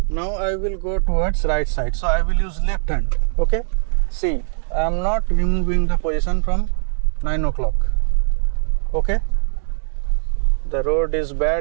Now I will go towards right side. So I will use left hand. Okay. See, I am not removing the position from 9 o'clock. Okay. The road is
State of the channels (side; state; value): left; silent; digital silence